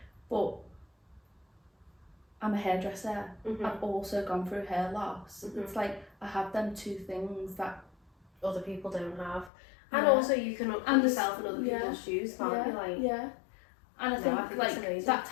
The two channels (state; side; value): drops out; right; at 9.5 s